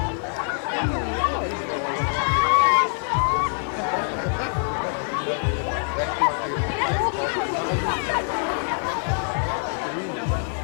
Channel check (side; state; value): right; silent; 56 dB below the other